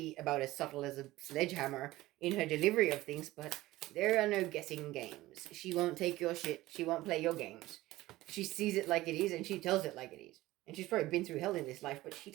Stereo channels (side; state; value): left; quieter; 17.4 dB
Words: about as subtle as a sledgehammer in her delivery of things, but there are no guessing games. She won't take your shit. She won't play your games. She sees it like it is, and she tells it like it is. And she's probably been through hell in this life, but she